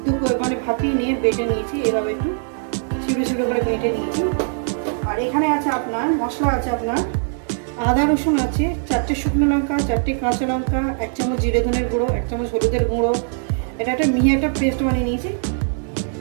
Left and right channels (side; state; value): left; silent; digital silence